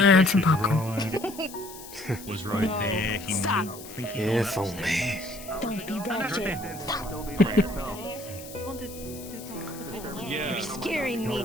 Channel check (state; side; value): noise; left; hiss, 15 dB below the sound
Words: and some popcorn. Was right there. Stop. If only. Don't be ratchet. You're scaring